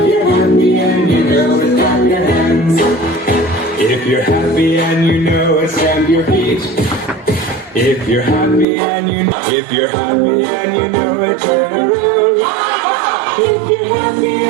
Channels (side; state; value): left; drops out; at 8.7 s